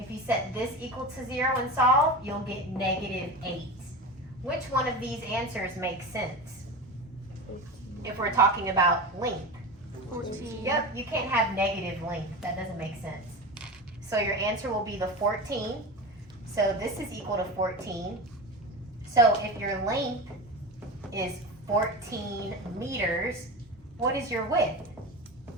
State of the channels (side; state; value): both; normal; correlation 0.26